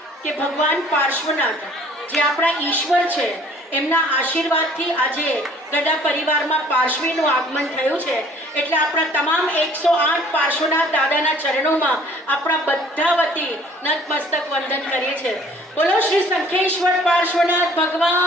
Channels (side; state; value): both; normal; correlation 0.55